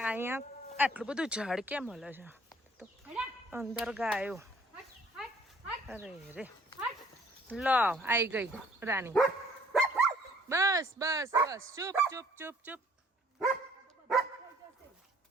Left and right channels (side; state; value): both; normal; correlation 0.59